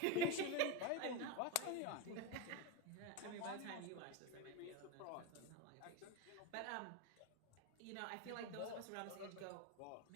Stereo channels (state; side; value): different; both; correlation 0.05